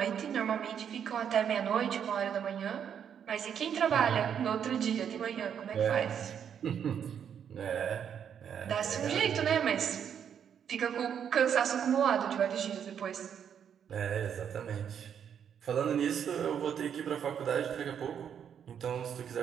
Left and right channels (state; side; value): quieter; left; 8.3 dB